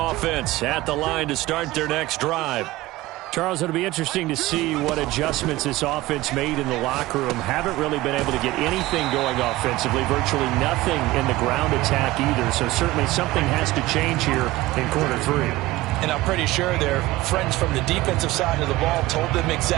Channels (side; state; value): left; quieter; 18.1 dB